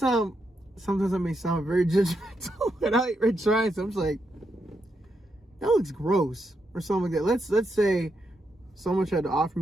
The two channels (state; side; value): normal; both; correlation 0.82